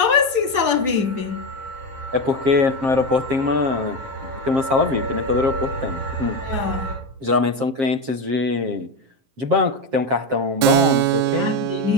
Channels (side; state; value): left; late; 7.6 ms